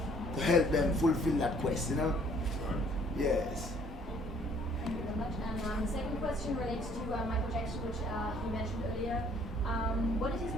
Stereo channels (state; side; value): normal; both; correlation 0.60